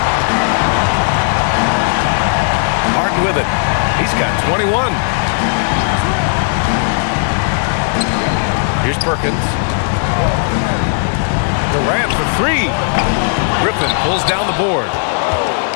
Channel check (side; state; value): right; silent; digital silence